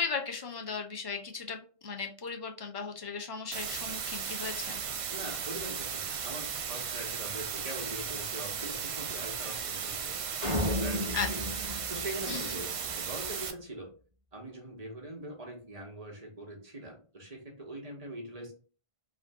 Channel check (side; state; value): left; late; 1.5 ms